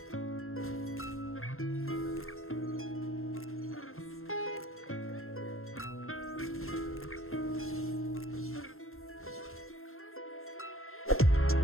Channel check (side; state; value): right; late; 0.62 ms